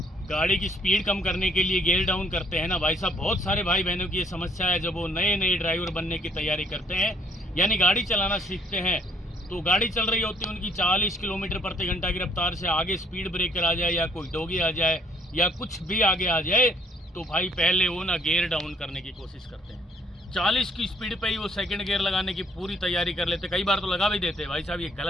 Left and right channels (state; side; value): normal; both; correlation 0.63